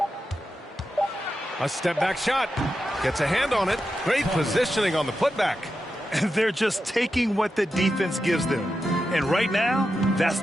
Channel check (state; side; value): normal; both; correlation 0.89